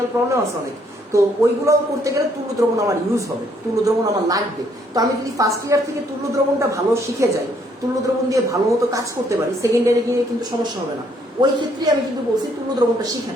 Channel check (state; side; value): normal; both; correlation 0.68